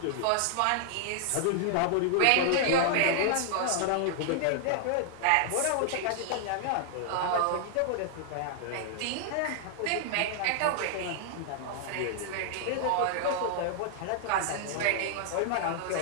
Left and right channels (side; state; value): both; different; correlation -0.01